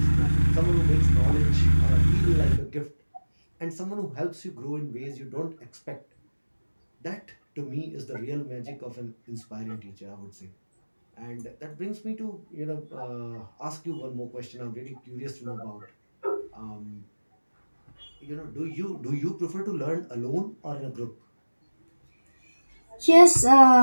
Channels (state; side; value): inverted; both; correlation -1.00